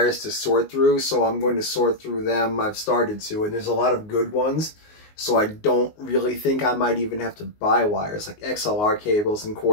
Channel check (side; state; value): right; late; 19 ms